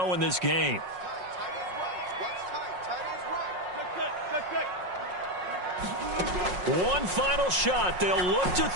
in this game. One final shot. They'll look to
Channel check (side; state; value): left; late; 5.5 ms